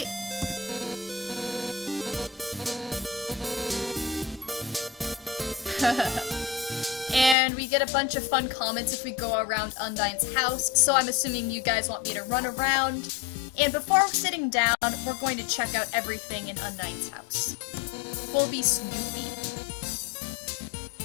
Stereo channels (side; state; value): right; drops out; at 7.4 s